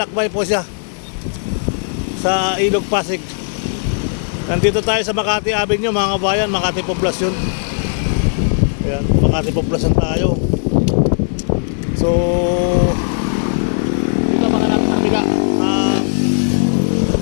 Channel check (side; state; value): right; silent; digital silence